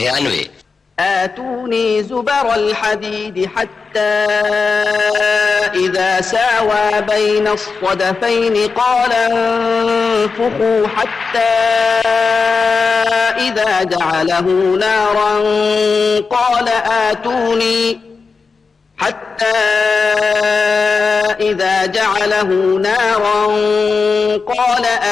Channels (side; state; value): right; quieter; 4.7 dB